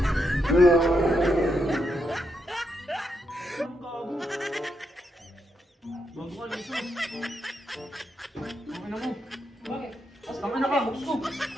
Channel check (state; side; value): normal; both; correlation 0.81